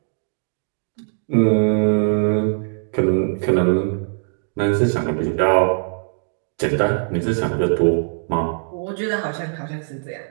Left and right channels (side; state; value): left; silent; 65 dB below the other